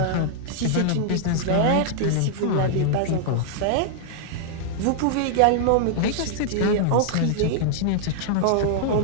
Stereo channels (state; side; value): different; both; correlation -0.01